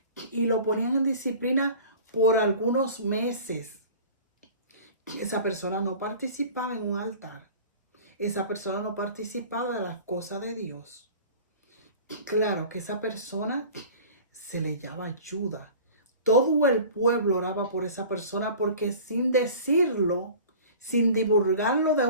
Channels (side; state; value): both; inverted; correlation -0.42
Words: y lo ponían en disciplina por algunos meses. Esa persona no participaba en un altar. Esa persona no participaba de las cosas de Dios. Claro que esa persona se le llama ayuda. Todo el pueblo oraba por esa persona porque sin decirlo, sin divulgarlo de